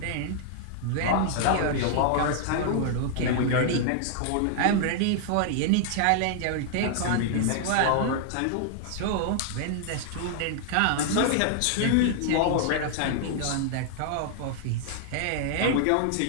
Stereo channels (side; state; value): both; different; correlation -0.01